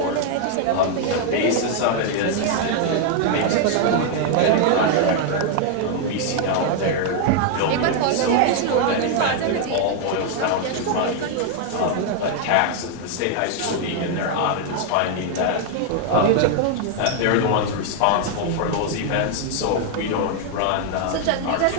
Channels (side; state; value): both; different; correlation 0.00